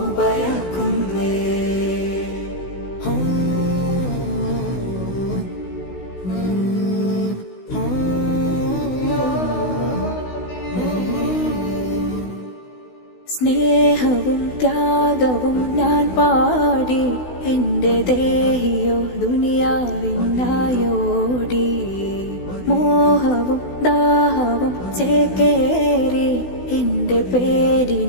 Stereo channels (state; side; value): late; right; 16 ms